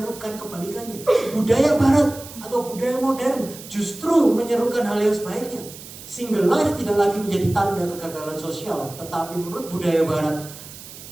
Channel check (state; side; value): noise; right; hiss, 15 dB below the sound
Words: kebalikannya. Budaya barat atau budaya modern justru menyerukan hal yang sebaliknya. Single life tidak lagi menjadi tanda kegagalan sosial, tetapi menurut budaya barat,